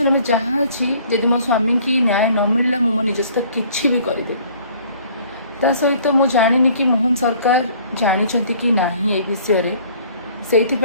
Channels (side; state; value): both; inverted; correlation -0.55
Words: में जहाँ अच्छी जदि मो स्वामी की न्याय न मिलला मो निज सहित किसी भी करदे ता सहित मु जानी कि मोहन सरकार जानी कि नहीं ए विषय से